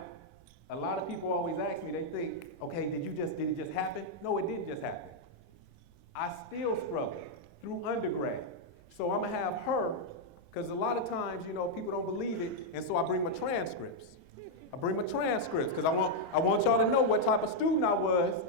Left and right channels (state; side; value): noise; right; rumble, 29 dB below the sound